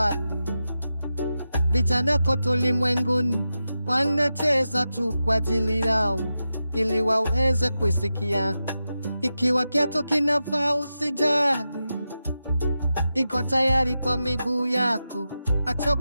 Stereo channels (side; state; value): both; inverted; correlation -0.91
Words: vijana kote ulimwenguni wanacheza tu kwa ajili yao, ili waweze kusikia. Ikiwa kiatu kinafaa usijali, iko tayari kwa miguu yako,